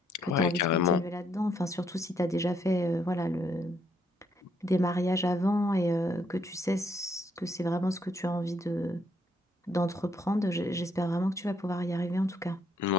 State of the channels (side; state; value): both; normal; correlation 0.71